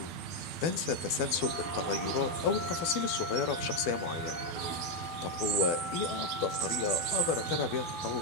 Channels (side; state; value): right; late; 12 ms